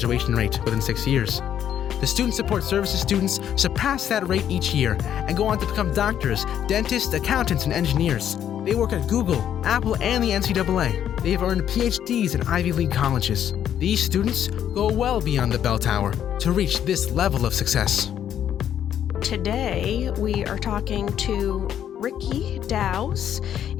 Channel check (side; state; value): right; quieter; 9.9 dB